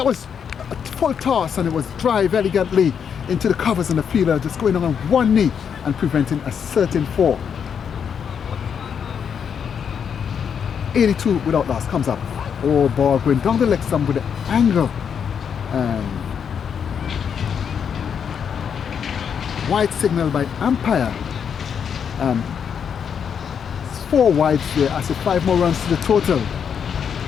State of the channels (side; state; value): right; quieter; 7.4 dB